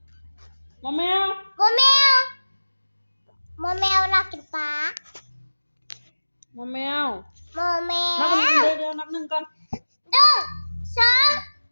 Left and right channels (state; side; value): inverted; both; correlation -1.00